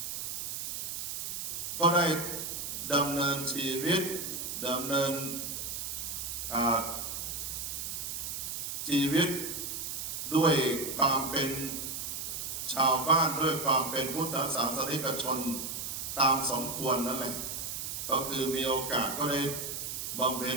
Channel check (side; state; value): right; noise; hiss, 4 dB below the sound